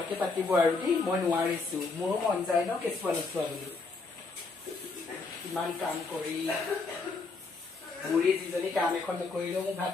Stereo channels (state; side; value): quieter; right; 4.0 dB